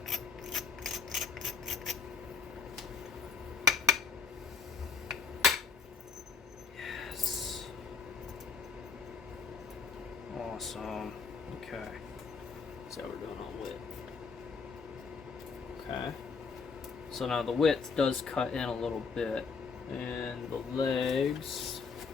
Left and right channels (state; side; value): quieter; right; 5.3 dB